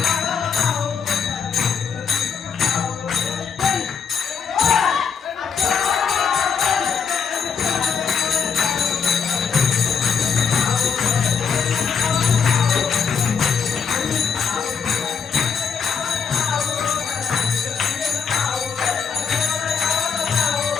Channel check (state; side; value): quieter; right; 6.5 dB